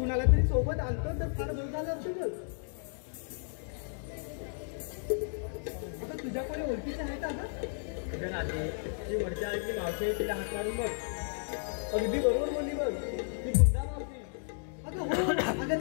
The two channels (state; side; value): silent; right; digital silence